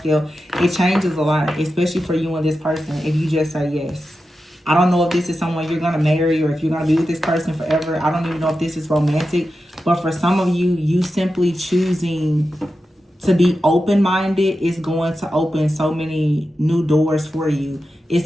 it changes a lot, especially for you and this person, if you just say yes. I don't know if this is someone you're going to marry or if you're going to be with this person forever. I don't even know if this is romantic. But for some of you, you simply choosing to be open-minded is going to open so many new doors for you.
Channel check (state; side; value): normal; both; correlation 0.91